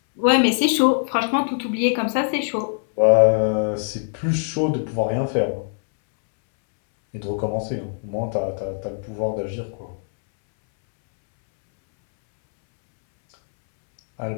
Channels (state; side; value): silent; right; 64 dB below the other